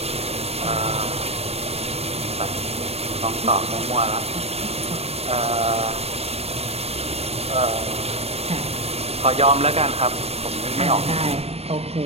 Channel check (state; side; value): late; left; 0.30 ms